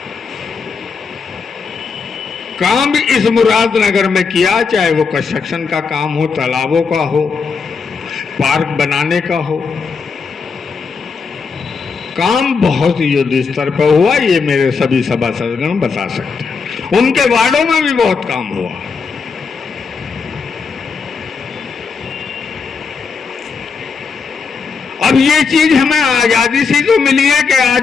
काम इस मुरादनगर में किया, चाहे वो कंस्ट्रक्शन का काम हो, तालाबों का हो, पार्क बनाने का हो, काम बहुत युद्ध स्तर पर हुआ। ये मेरे सभी सभासदगण बता सकते हैं। उनके वार्डों में भी बहुत काम हुआ। अब ये चीज हमें आजादी से तो मिली है कि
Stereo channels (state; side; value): quieter; right; 5.3 dB